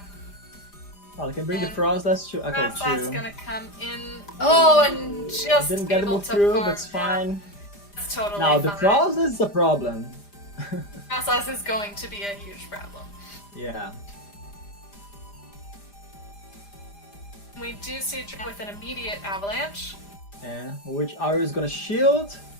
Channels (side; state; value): right; late; 5.0 ms